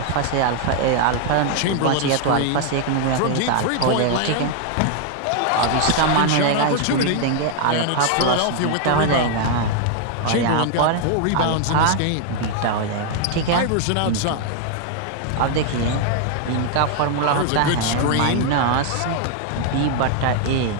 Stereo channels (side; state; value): both; different; correlation 0.00